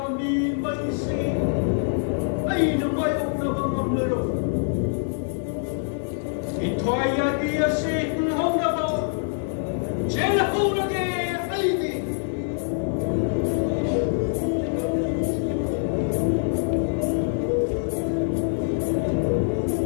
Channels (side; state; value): right; silent; digital silence